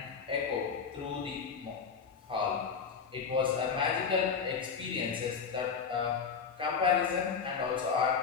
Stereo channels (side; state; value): right; quieter; 6.1 dB